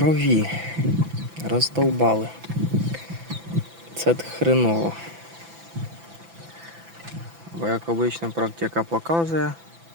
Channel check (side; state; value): left; late; 6.0 ms